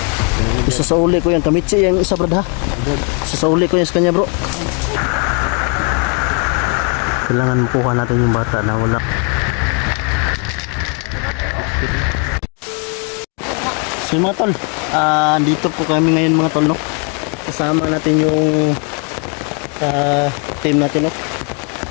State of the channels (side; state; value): right; quieter; 37.6 dB